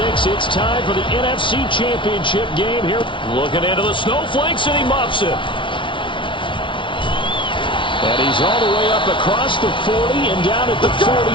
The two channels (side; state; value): right; late; 0.24 ms